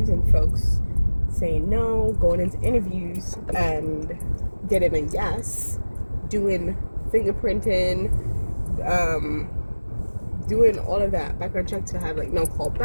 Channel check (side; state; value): both; inverted; correlation -1.00